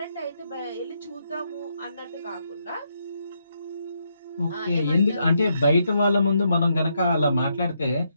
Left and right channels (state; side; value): inverted; both; correlation -0.78